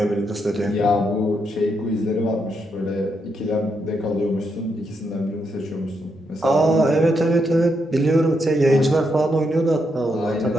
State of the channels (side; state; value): both; normal; correlation 0.80